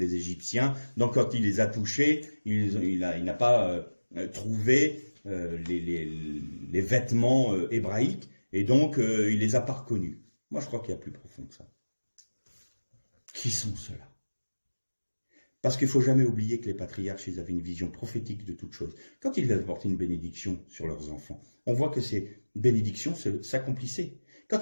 Égyptiens. Donc quand il les a touchés, il n'a pas trouvé les vêtements hébraïques. Et donc il les a pas reconnus. Moi je crois qu'il y a plus profond que ça. Qui sont ceux-là? Parce qu'il ne faut jamais oublier que les patriarches, ils avaient une vision prophétique de toute chose. Quand ils apportaient une bénédiction sur leurs enfants, on voit que ces bénédictions s'accomplissaient.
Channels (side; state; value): both; inverted; correlation -1.00